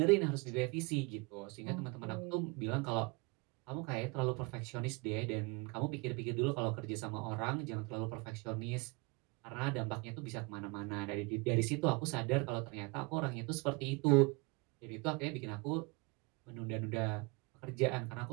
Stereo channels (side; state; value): left; quieter; 28.1 dB